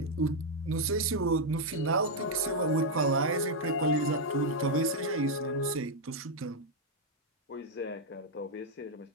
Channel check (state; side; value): normal; both; correlation 0.00